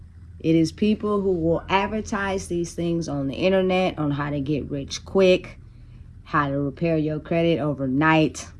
It is people who will advertise these things on the internet on how to get rich quick, how to repair your credit overnight.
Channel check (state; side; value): identical; both; correlation 1.00